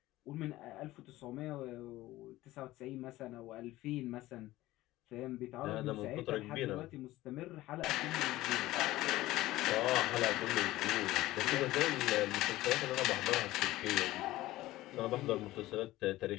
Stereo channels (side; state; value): right; quieter; 16.9 dB